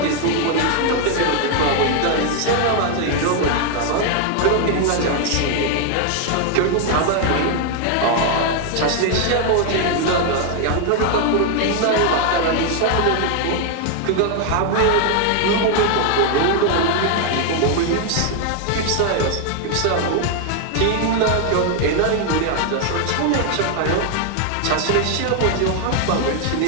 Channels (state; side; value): different; both; correlation 0.00